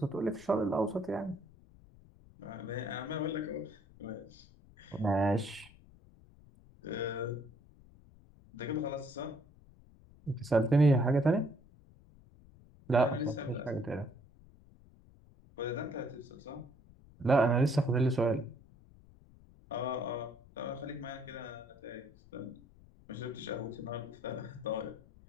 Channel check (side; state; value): left; noise; rumble, 24 dB below the sound